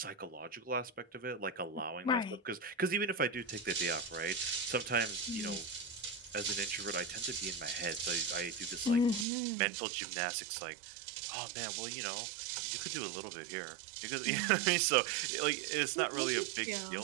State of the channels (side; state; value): left; drops out; at 9.2 s